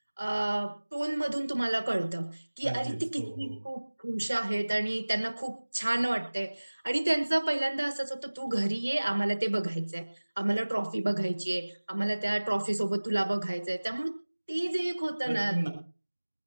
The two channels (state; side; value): inverted; both; correlation -1.00